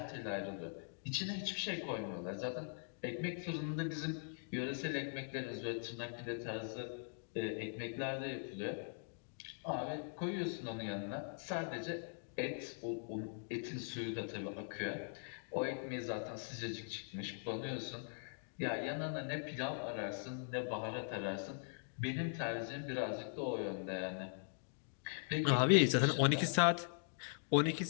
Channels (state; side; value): silent; right; digital silence